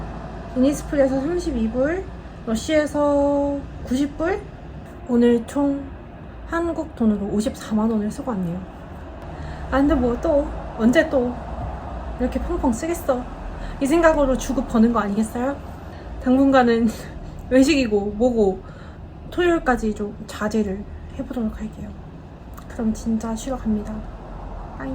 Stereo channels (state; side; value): identical; both; correlation 1.00